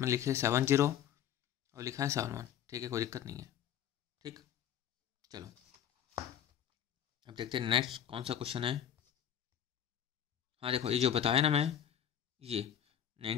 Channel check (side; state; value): right; quieter; 9.8 dB